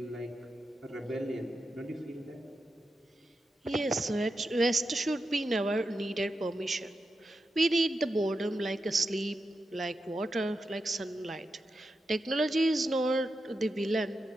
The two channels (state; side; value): normal; both; correlation 0.88